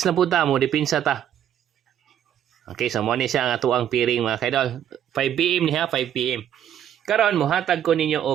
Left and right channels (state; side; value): quieter; left; 10.2 dB